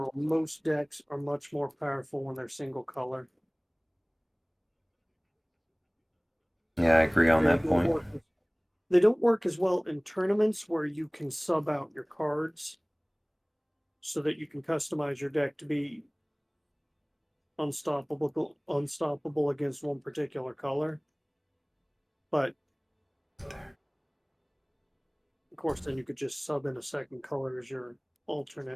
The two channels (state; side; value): identical; both; correlation 1.00